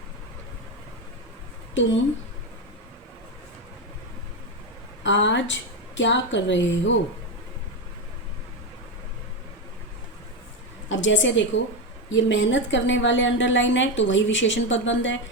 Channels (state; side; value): normal; both; correlation 0.12